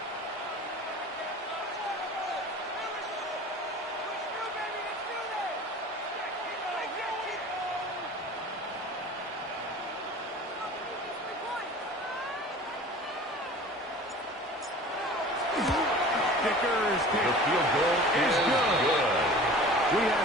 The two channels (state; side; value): normal; both; correlation 0.41